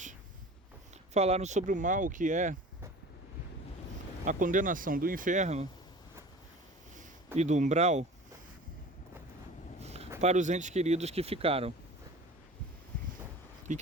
falaram sobre o mal que é a condenação do inferno e do umbral para os entes queridos que ficaram, e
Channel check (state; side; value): normal; both; correlation 0.40